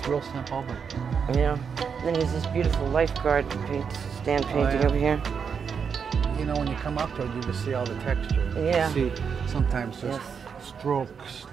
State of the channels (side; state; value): left; quieter; 6.5 dB